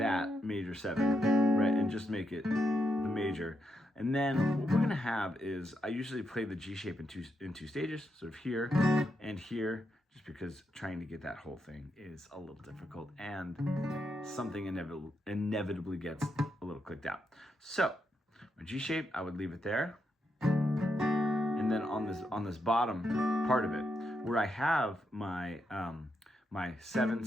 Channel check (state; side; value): normal; both; correlation 0.82